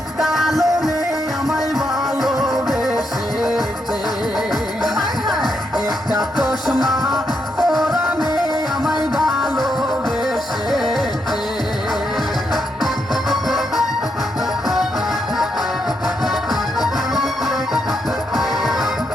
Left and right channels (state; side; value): normal; both; correlation 0.80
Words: কালো মেয়ে আমায় ভালোবেসেছে। একটা চশমা ওরা মেয়ে আমায় ভালোবেসেছে।